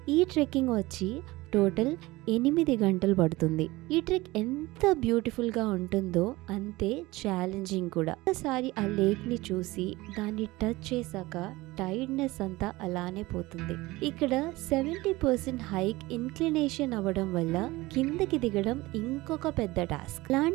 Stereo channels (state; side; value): quieter; left; 20.2 dB